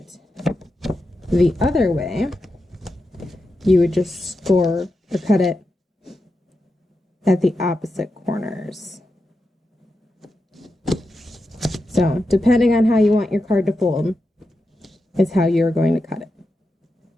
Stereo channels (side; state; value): both; normal; correlation 0.88